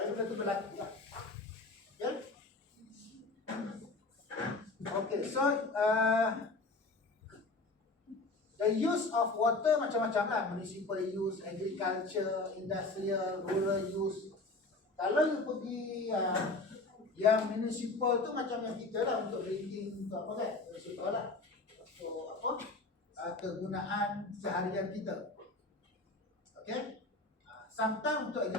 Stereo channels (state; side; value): quieter; right; 3.2 dB